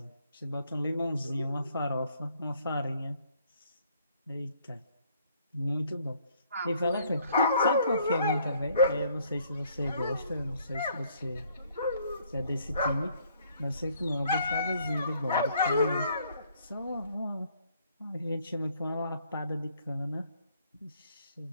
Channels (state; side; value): inverted; both; correlation -0.64